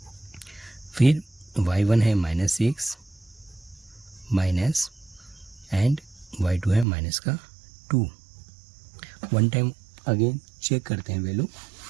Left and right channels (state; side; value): drops out; left; at 6.9 s